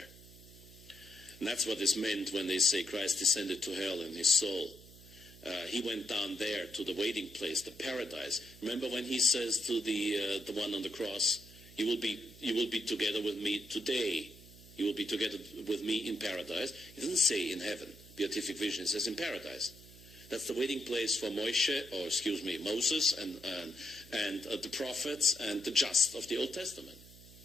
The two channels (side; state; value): right; noise; hum, 20 dB below the sound